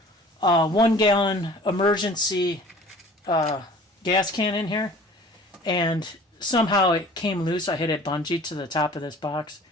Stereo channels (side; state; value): both; normal; correlation 0.47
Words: 1 gallon emergency gas can in here, and somehow it came loose. I had it bungeed to the top of this box.